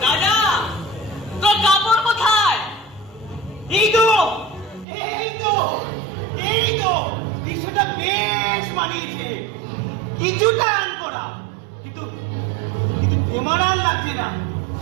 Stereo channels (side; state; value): left; drops out; at 4.9 s